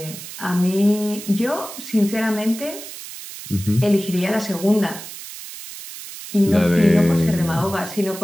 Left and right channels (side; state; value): right; noise; hiss, 12 dB below the sound